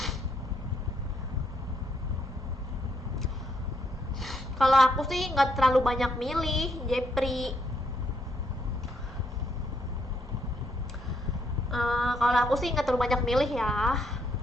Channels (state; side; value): normal; both; correlation 0.74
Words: Kalau aku sih nggak terlalu banyak milih, Jepri. Kalau aku sih nggak terlalu banyak milih ya.